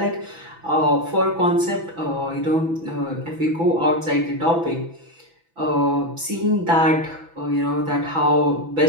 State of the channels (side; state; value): left; late; 6.0 ms